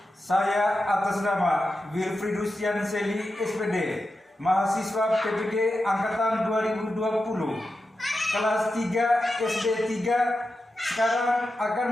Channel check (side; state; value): both; normal; correlation 0.90